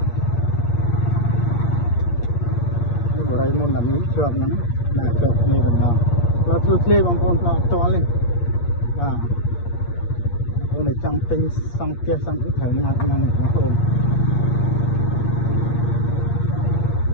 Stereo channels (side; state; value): right; late; 8.5 ms